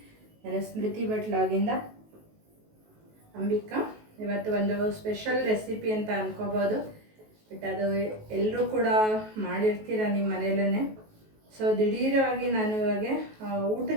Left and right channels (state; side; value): late; left; 19 ms